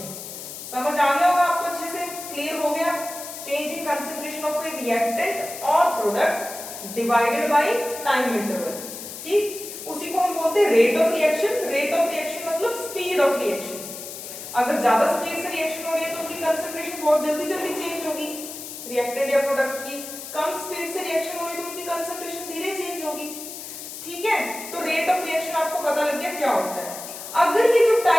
समझ आ गया होगा आपको, अच्छे से क्लियर हो गया। Change in concentration of a reactant और product divided by time interval, ठीक, उसी को हम बोलते हैं rate of reaction. Rate of reaction मतलब स्पीड ऑफ रिएक्शन। अगर ज्यादा स्पीड से रिएक्शन हो रही है तो उनकी कंसंट्रेशन बहुत जल्दी जल्दी चेंज होगी रिएक्टेंट या प्रोडक्ट की। कम स्पीड से रिएक्शन हो रही है तो उसकी कंसंट्रेशन धीरे चेंज होगी। ठीक है, तो रेट ऑफ रिएक्शन आपको पता लग गया क्या होता है। अगर ये जो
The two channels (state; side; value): noise; left; hiss, 10 dB below the sound